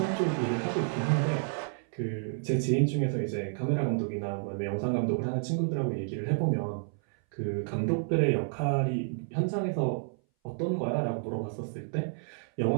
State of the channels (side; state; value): left; silent; 58 dB below the other